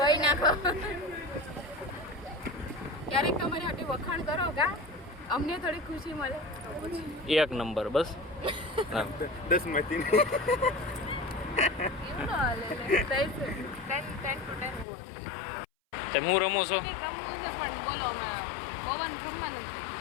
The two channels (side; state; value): right; drops out; at 14.9 s